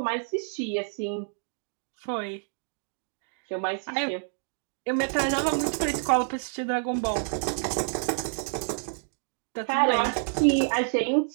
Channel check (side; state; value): left; silent; digital silence